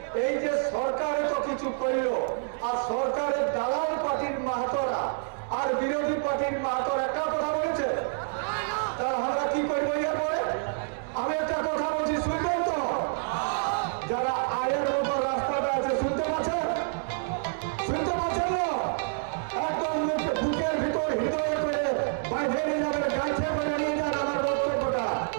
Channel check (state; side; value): silent; left; 59 dB below the other